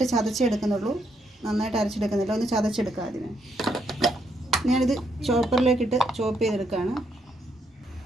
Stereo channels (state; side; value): normal; both; correlation 0.76